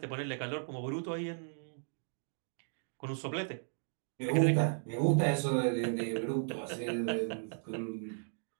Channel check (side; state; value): left; silent; digital silence